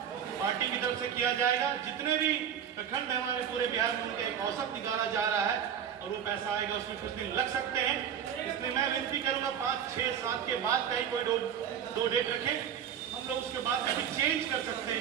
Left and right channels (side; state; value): left; quieter; 8.7 dB